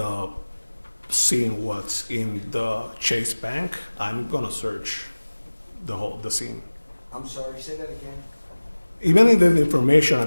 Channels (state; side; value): inverted; both; correlation -1.00